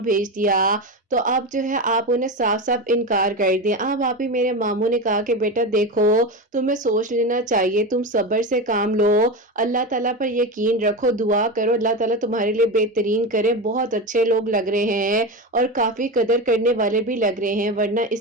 بھیج دیا، تو اب جو ہے آپ انہیں صاف صاف انکار کر دیں۔ اب آپ ہی میرے ماموں نے کہا کہ بیٹا دیکھو تمہیں سوچ لینا چاہیے، تم صبر سے کام لو، اللہ تعالیٰ پر یقین رکھو، دعا کرو اللہ تعالیٰ تمہارے لیے بہترین کرے، بہت اچھے لوگ لگ رہے ہیں اور کافی قدر کرنے والے بھی لگ رہے ہیں، ورنہ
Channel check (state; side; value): normal; both; correlation 0.20